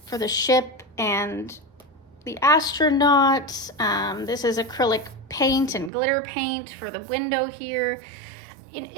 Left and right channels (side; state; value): left; drops out; at 5.9 s